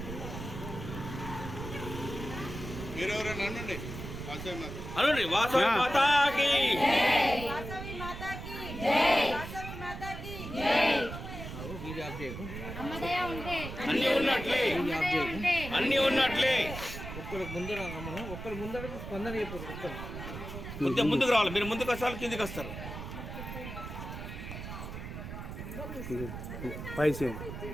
మీరెవరైనా అనండి. అనండి. వాసవి మాతాకి వాసవి మాతాకి జై వాసవి మాతాకి జై అమ్మదయ ఉంటే అన్ని ఉన్నట్లే, అమ్మదయ ఉంటే అన్ని ఉన్నట్లే. ఒక్కరికి ముందర మనం ఒక్కరి ముందర స్పందన అయిపోతుంది. ఒక్కరు ముందుకు రావాలి. మీరు ముందుకు వస్తారు, కిందికి వస్తారు.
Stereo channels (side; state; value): right; noise; rumble, 9 dB below the sound